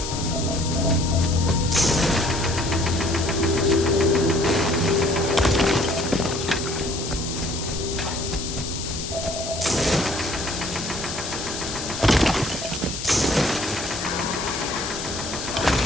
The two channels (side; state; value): left; noise; hiss, 7 dB below the sound